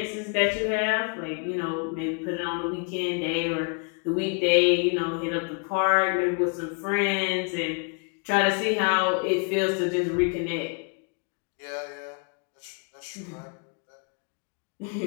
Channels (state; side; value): quieter; right; 34.8 dB